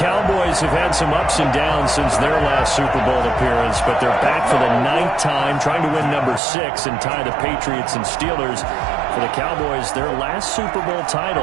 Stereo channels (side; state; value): left; drops out; at 6.4 s